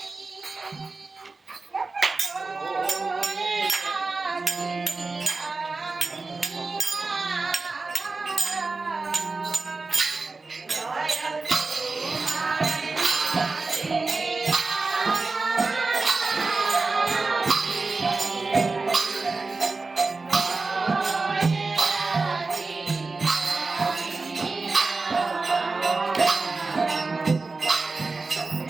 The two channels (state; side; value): quieter; left; 3.8 dB